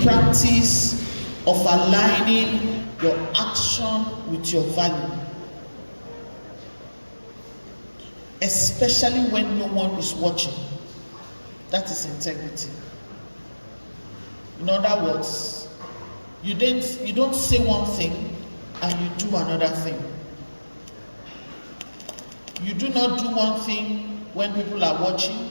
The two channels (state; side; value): inverted; both; correlation -1.00